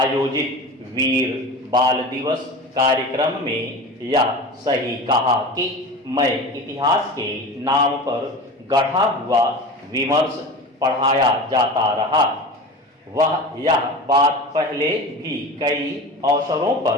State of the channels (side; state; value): both; normal; correlation 0.32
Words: वीर बाल दिवस कार्यक्रम में यह सही कहा कि मैं इतिहास के नाम पर गढ़ा हुआ विमर्श पढ़ाया जाता रहा। वह यह बात पहले भी कई अवसरों